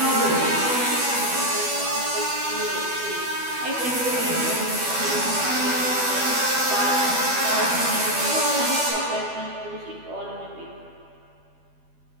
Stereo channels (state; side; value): late; left; 12 ms